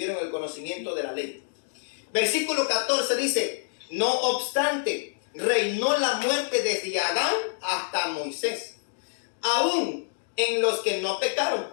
el conocimiento de la ley. Versículo 14 dice, no obstante, reinó la muerte desde Adán hasta Moisés, aún en los que no pecaron,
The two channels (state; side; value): silent; right; digital silence